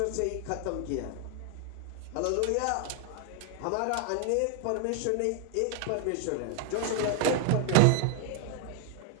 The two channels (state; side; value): different; both; correlation 0.00